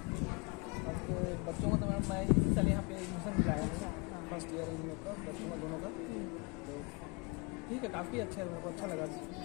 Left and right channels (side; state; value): right; quieter; 30.8 dB